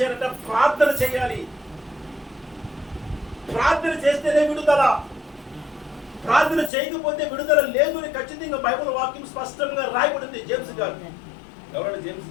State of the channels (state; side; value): drops out; right; at 6.7 s